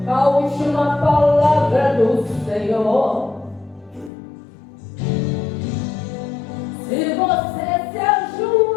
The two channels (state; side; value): drops out; right; at 4.1 s